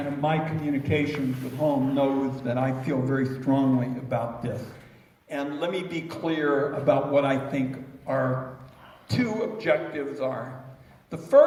of my communications at home knows that I feel very strongly about this. And let me be clear about what I think our two objectives are. The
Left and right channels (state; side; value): identical; both; correlation 1.00